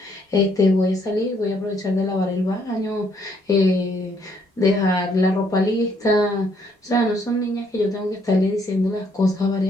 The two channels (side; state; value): both; normal; correlation 0.69